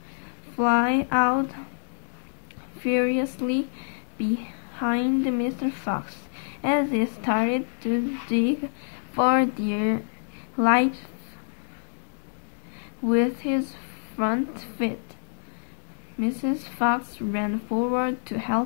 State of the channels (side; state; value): right; silent; digital silence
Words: fly out furiously behind Mr. Fox as he started to dig for dear life with his front feet. Mrs. Fox ran forward to